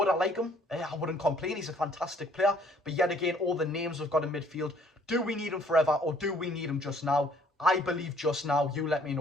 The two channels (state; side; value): normal; both; correlation 0.61